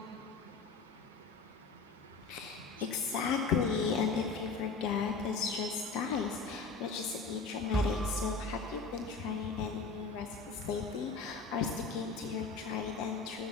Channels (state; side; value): quieter; right; 4.4 dB